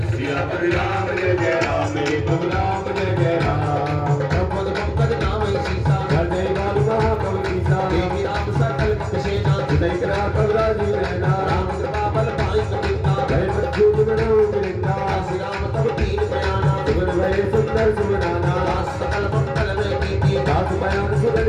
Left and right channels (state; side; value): identical; both; correlation 1.00